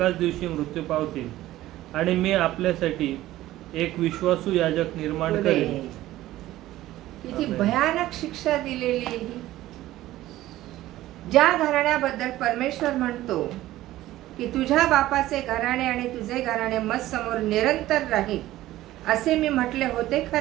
दिवशी मृत्यू पावतील, आणि मी आपल्यासाठी एक विश्वासू याजक निर्माण करेन. किती भयानक शिक्षा दिलेली आहे ही. ज्या घराण्याबद्दल परमेश्वर म्हणतो की तुझ्या बापाचे घराणे आणि तुझे घराणे मत समोर निरंतर राहील, असे मी म्हटले होते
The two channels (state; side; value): quieter; left; 15.4 dB